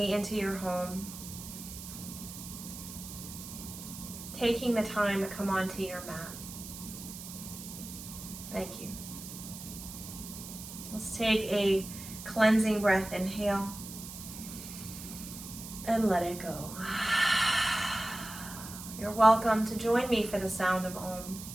into your home. Taking the time to come onto your mat. Thank you. Let's take a cleansing breath. Inhale and let it go. You're welcome to join me for the sound of Om.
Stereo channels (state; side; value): noise; right; hiss, 11 dB below the sound